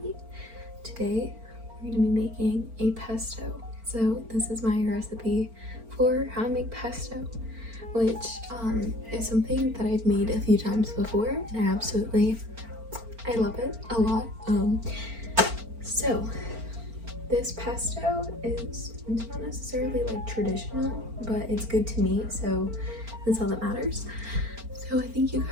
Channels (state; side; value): late; left; 4.4 ms